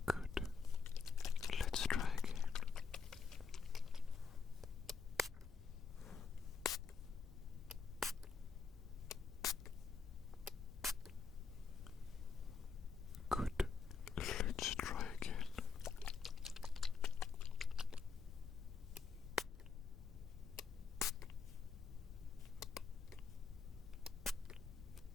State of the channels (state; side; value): quieter; right; 5.5 dB